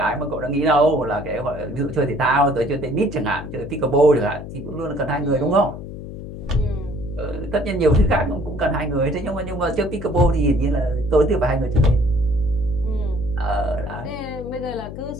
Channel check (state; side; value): noise; left; hum, 10 dB below the sound